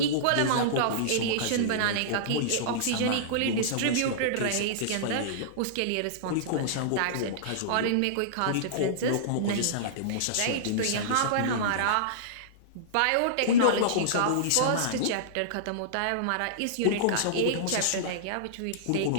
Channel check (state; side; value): different; both; correlation -0.02